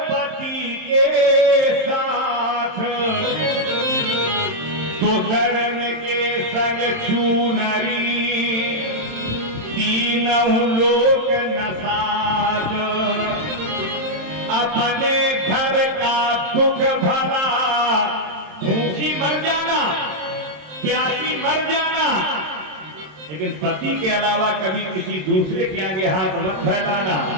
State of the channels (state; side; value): late; left; 27 ms